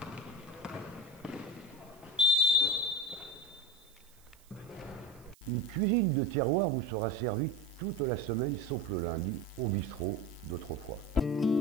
Une cuisine de terroir vous sera servie toute la semaine sauf le lundi au bistrot d'autrefois.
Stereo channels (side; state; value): right; noise; hiss, 28 dB below the sound